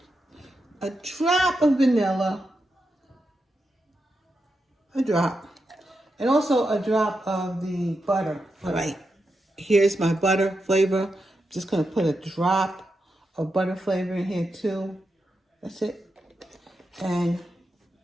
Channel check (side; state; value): both; normal; correlation 0.87